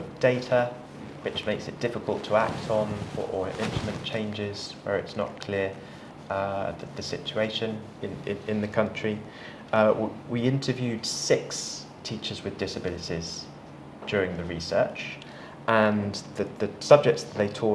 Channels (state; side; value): identical; both; correlation 1.00